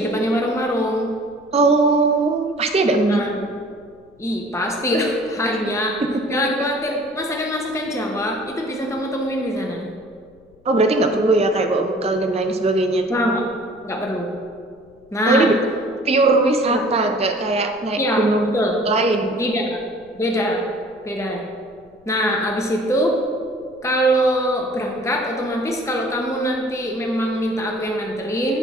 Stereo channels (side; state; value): left; noise; rumble, 30 dB below the sound